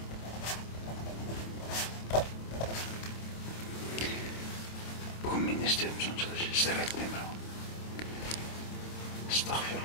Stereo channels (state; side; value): late; right; 26 ms